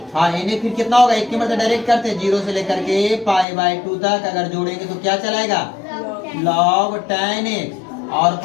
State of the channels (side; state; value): right; drops out; at 3.5 s